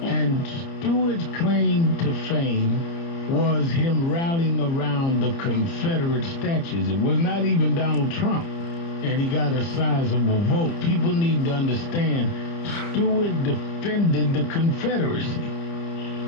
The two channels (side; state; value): right; late; 30 ms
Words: And Stewart's claim to fame was him rallying around the Confederate statues. It was not even Donald Trump. And he got a sizable vote. People need to understand Stewart defended the Confederacy.